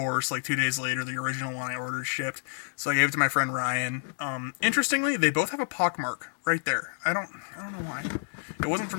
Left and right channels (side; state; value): right; silent; digital silence